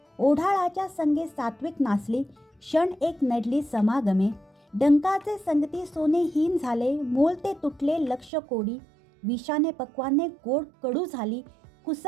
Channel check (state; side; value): drops out; left; at 8.3 s